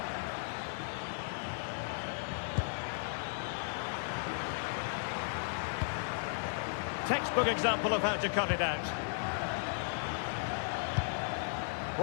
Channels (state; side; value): silent; right; digital silence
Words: Textbook example of how to cut it out.